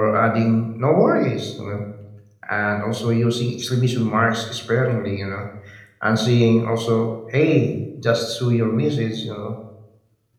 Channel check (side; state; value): both; identical; correlation 1.00